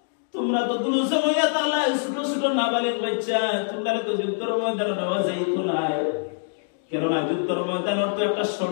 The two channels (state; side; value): silent; right; digital silence